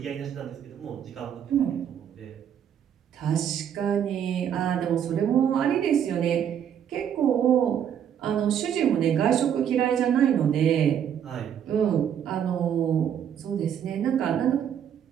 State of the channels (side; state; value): left; quieter; 9.0 dB